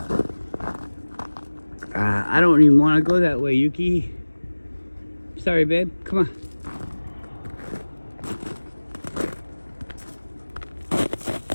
I don't even want to go that way, Yuki. Sorry, babe. Come on.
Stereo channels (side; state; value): both; inverted; correlation -1.00